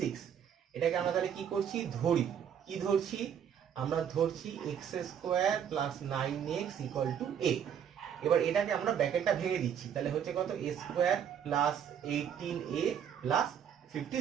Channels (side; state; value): left; quieter; 8.6 dB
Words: এটাকে আমরা তাহলে কি করছি, কি ধরছি, আমরা ধরছি x square plus 9x equal to a। এবার এটাকে আমরা ব্র্যাকেটটা ভেঙে দিচ্ছি, তাহলে হচ্ছে কত a square plus 18a plus